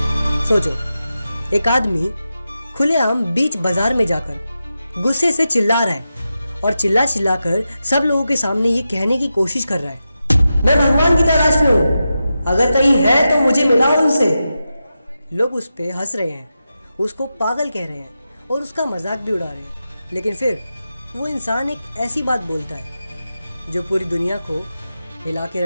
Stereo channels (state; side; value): inverted; both; correlation -0.90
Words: सोचो, एक आदमी खुलेआम बीच बाजार में जाकर गुस्से से चिल्ला रहा है और चिल्ला चिल्लाकर सब लोगों के सामने ये कहने की कोशिश कर रहा है, मैं भगवान की तलाश में हूं, अगर कहीं है तो मुझे मिलाओ उनसे। लोग उस पे हंस रहे हैं, उसको पागल कह रहे हैं और उसका मजाक भी उड़ा रहे हैं। लेकिन फिर वो इंसान एक ऐसी बात बोलता है जो पूरी दुनिया को हिला के